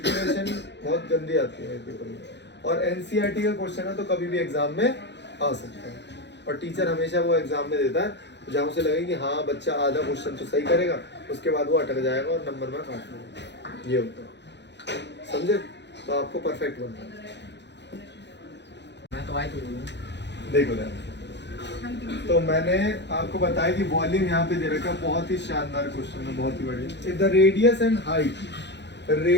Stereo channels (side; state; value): right; late; 0.51 ms